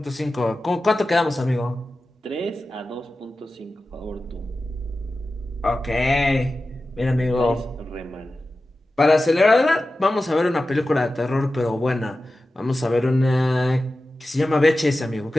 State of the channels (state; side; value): normal; both; correlation 0.94